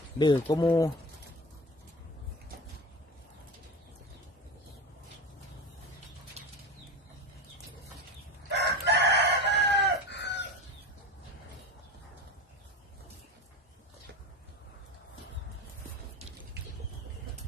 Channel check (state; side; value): normal; both; correlation 0.28